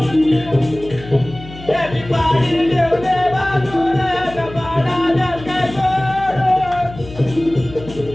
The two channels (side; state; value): left; noise; hum, 16 dB below the sound